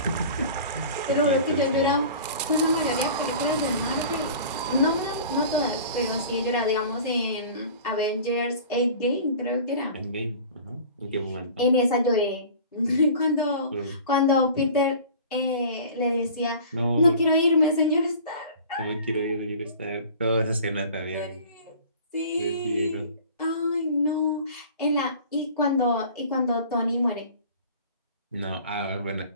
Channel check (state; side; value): inverted; both; correlation -0.42